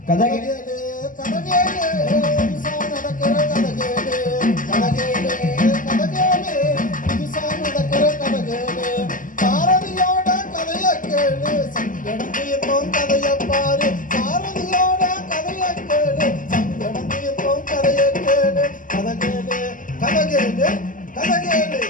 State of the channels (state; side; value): late; right; 0.38 ms